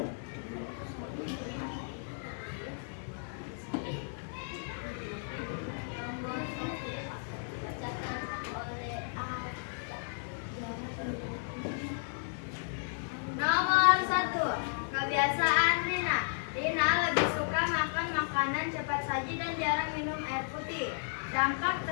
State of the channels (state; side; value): silent; right; digital silence